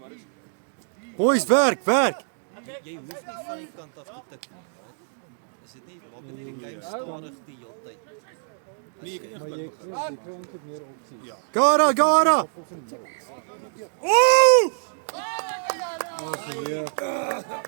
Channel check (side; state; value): left; silent; digital silence